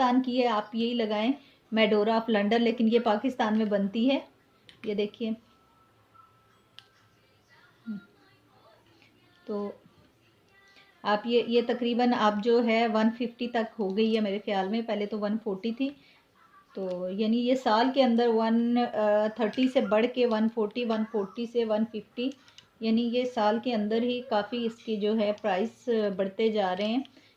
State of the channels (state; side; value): identical; both; correlation 1.00